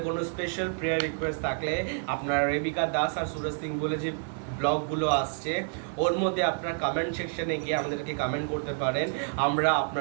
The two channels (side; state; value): left; silent; 58 dB below the other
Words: কোনো স্পেশাল প্রেয়ার রিকোয়েস্ট থাকলে আপনারা রেবিকা দাস আর সুরজ সিং বলে যে ব্লগগুলো আসছে, ওর মধ্যে আপনার কমেন্ট সেকশনে গিয়ে আমাদেরকে কমেন্ট করতে পারেন। আমরা